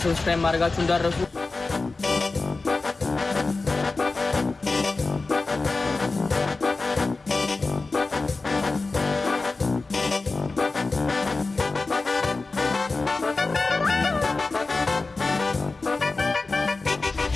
ሰብስክራይብ ማድረጋችሁ እንዳትረሱ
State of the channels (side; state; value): right; quieter; 3.7 dB